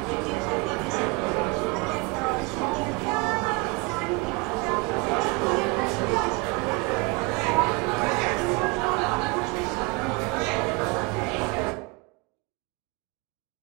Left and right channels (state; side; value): quieter; left; 27.6 dB